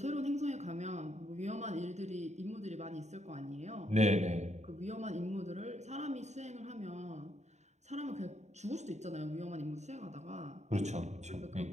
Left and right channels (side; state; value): left; late; 0.33 ms